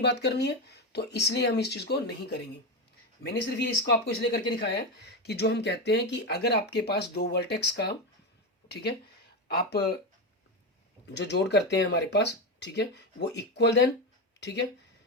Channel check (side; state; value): both; normal; correlation 0.14